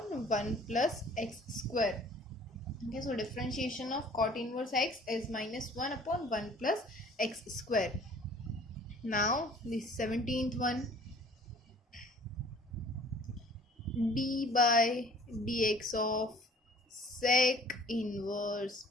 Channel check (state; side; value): normal; both; correlation 0.51